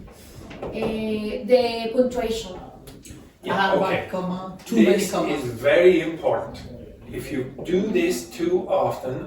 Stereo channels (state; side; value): identical; both; correlation 1.00